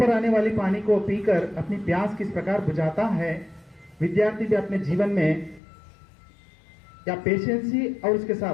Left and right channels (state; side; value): drops out; right; at 5.6 s